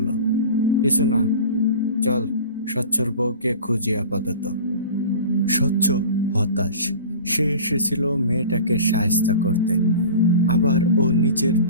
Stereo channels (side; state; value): both; inverted; correlation -0.38